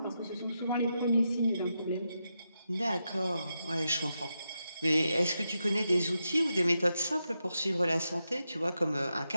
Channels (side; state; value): both; inverted; correlation -0.87